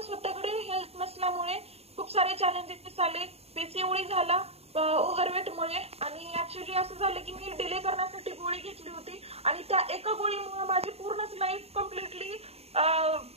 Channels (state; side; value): late; left; 0.30 ms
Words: स्वतःकडे हेल्थ नसल्यामुळे खूप सारे चॅलेंजेस आले. पीसीओडी झाला ओव्हरवेटमुळे, आणि ऍक्च्युली असं झालं की मी डिले करण्यासाठी गोळी घेतली होती आणि त्या एका गोळीमुळे माझी पूर्णच लाईफ कम्प्लिटली